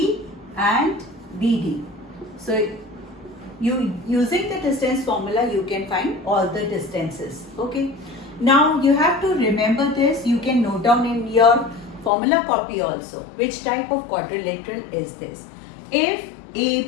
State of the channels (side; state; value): right; drops out; at 12.1 s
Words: and BD. So using the distance formula, you can find all the distances. Okay. Now you have to remember this. You can note down in your formula copy also. Which type of quadrilateral is this? If